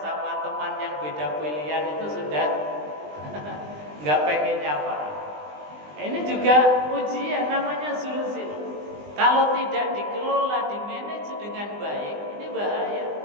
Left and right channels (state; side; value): late; left; 20 ms